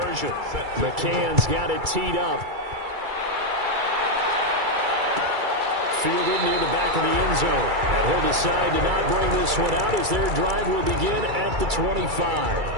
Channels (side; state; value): left; late; 2.3 ms